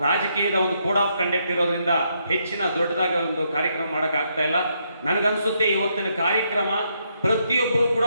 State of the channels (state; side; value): inverted; both; correlation -0.76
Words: ರಾಜಕೀಯದ ಒಂದು ಕೋಡ್ ಆಫ್ ಕಂಡಕ್ಟ್ ಇರೋದ್ರಿಂದ ಹೆಚ್ಚಿನ ದೊಡ್ಡದಾಗಿ ಒಂದು ಕಾರ್ಯಕ್ರಮ ಮಾಡೋಕ್ಕಾಗ್ತಾ ಇಲ್ಲ. ನನಗನ್ಸುತ್ತೆ ಇವತ್ತಿನ ಕಾರ್ಯಕ್ರಮ ಪ್ರತಿಯೊಬ್ಬರು ಕೂಡ